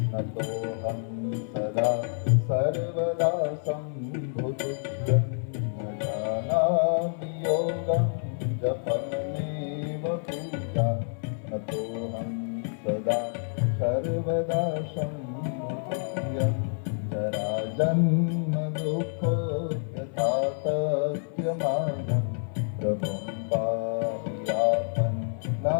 नतोऽहं सदा सर्वदा सम्भुतुभ्यं न जानामि योगं जपमनेव पूजा नतोऽहं सदा सर्वदा सम्भुतुभ्यं जराजन्म दुःखोऽयथातथ्यमानं प्रभुं पायापन्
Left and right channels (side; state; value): right; silent; 59 dB below the other